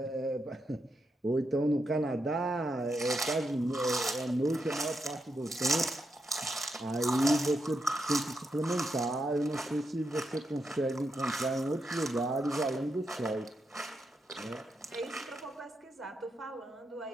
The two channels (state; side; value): normal; both; correlation 0.84